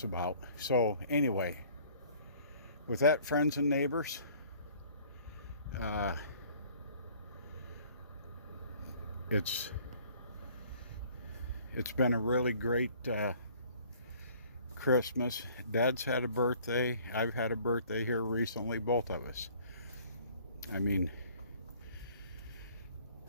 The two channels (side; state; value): both; inverted; correlation -0.55